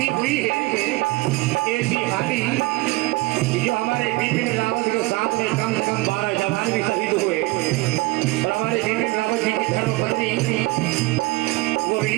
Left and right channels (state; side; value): quieter; left; 22.1 dB